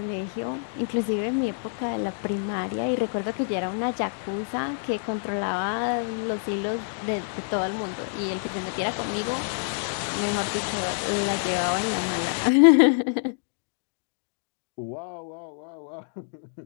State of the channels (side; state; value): right; silent; digital silence